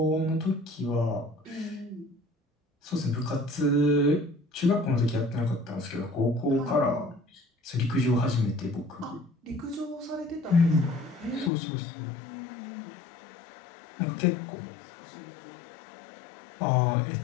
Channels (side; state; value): right; drops out; at 11.5 s